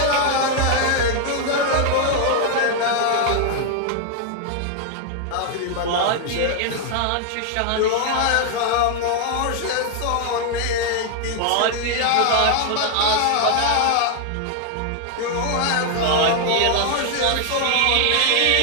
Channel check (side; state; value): both; different; correlation 0.00